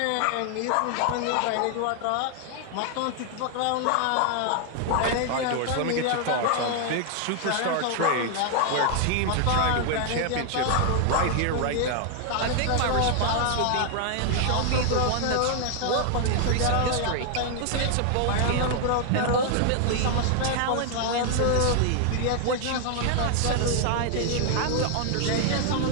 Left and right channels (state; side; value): different; both; correlation 0.00